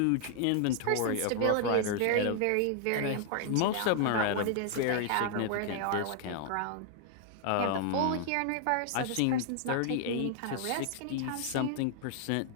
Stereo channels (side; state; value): both; different; correlation 0.00